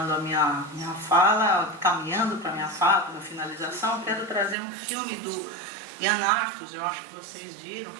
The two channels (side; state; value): left; drops out; at 4.5 s